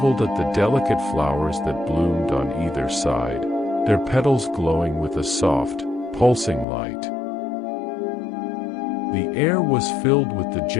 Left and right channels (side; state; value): right; drops out; at 6.7 s